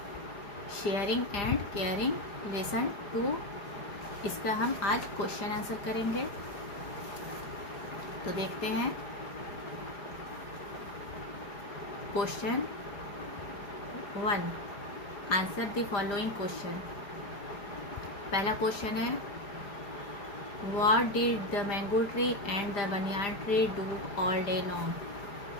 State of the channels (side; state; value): right; late; 5.0 ms